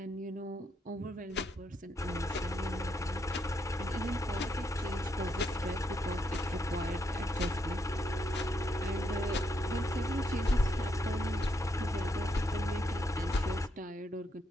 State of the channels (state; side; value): normal; both; correlation 0.78